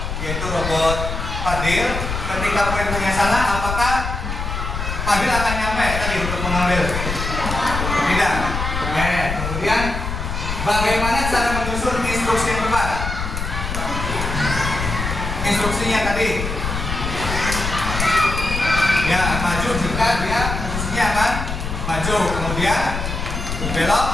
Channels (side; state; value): left; noise; rumble, 4 dB below the sound